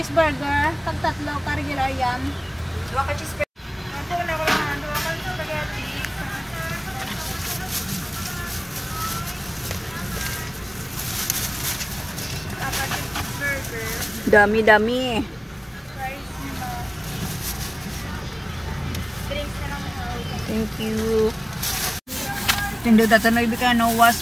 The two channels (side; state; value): both; identical; correlation 1.00